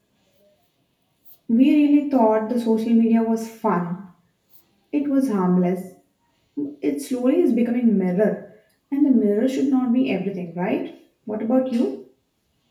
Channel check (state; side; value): identical; both; correlation 1.00